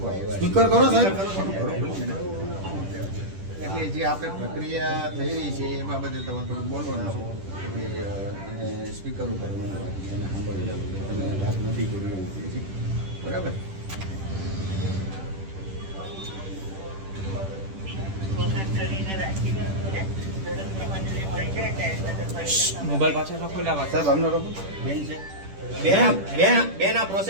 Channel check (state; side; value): late; left; 10 ms